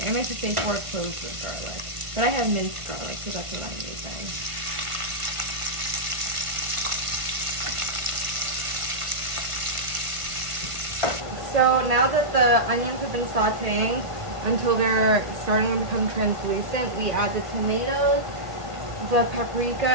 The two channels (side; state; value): left; late; 1.4 ms